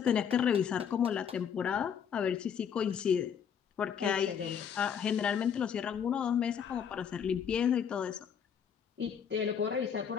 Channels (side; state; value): right; quieter; 7.8 dB